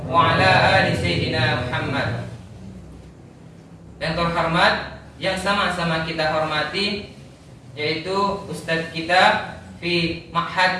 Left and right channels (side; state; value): both; identical; correlation 1.00